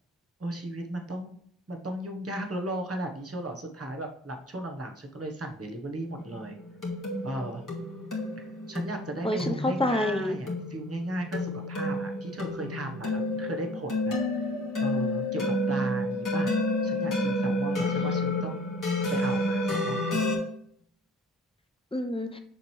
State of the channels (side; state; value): both; normal; correlation 0.50